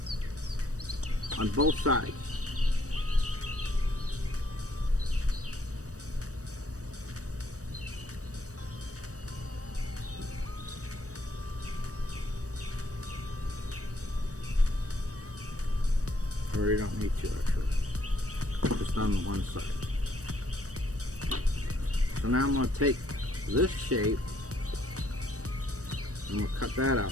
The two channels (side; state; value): left; late; 0.66 ms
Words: on both sides. Or you don't need to actually, just on one side. So now I'm going to take this shape and we'll cut that out.